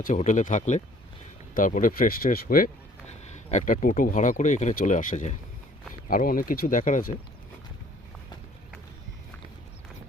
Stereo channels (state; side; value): normal; both; correlation 0.57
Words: হোটেলে থাকলে তারপরে ফ্রেশ ট্রেশ হয়ে একটা টোটো ভাড়া করে এখানে চলে আসা যায়। আরও অনেক কিছু দেখার আছে।